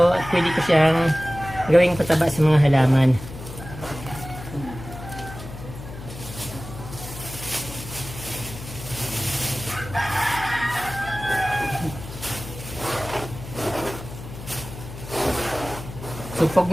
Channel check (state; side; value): noise; left; hum, 12 dB below the sound